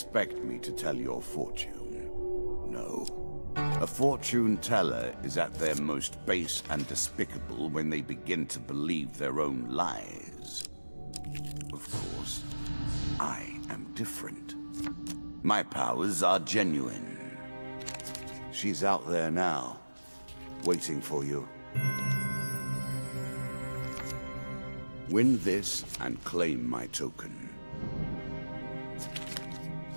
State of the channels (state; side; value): inverted; both; correlation -1.00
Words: me to tell your fortune? No. A fortune teller is at their most base and despicable when they begin to believe their own lies. Of course, I am different. My powers are genuine. She's out there now, waiting for you. Win this and claim my token.